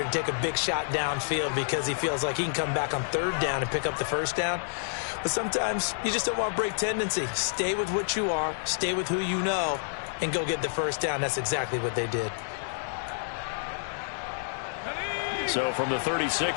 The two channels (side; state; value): right; silent; digital silence